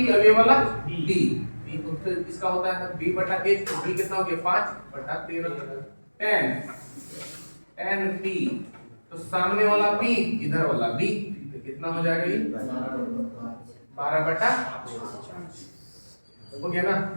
और ये वाला b, तो इसका होता है b बटा h, तो b कितना हो गया? 5 बटा 13। tan p, तो सामने वाला p इधर वाला b, तो कितना हो जाएगा? ये 12 बटा हो गया ना?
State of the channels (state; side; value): inverted; both; correlation -1.00